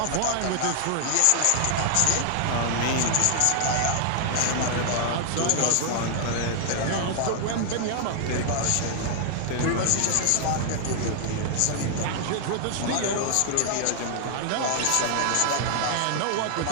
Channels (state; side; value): different; both; correlation 0.00